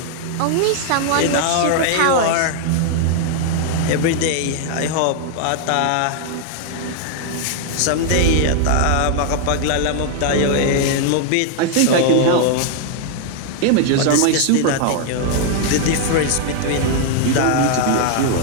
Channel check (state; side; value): different; both; correlation 0.00